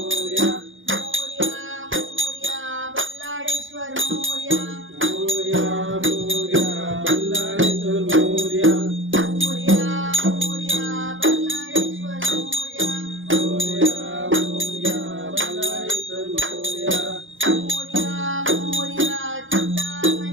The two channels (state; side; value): late; left; 0.57 ms